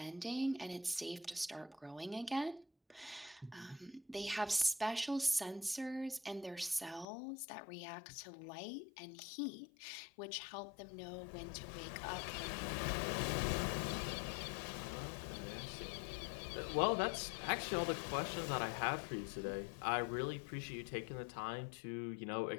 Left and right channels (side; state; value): right; drops out; at 7.1 s